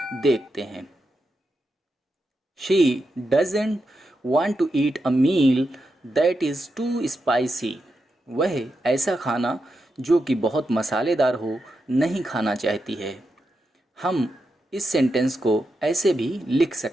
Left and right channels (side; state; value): both; normal; correlation 0.86